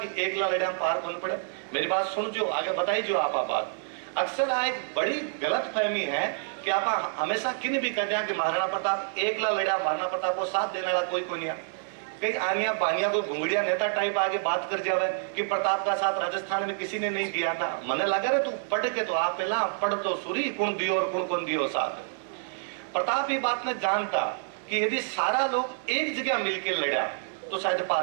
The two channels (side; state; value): left; silent; digital silence